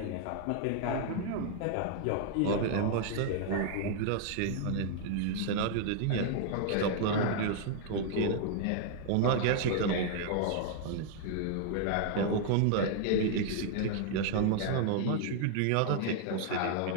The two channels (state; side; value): different; both; correlation 0.00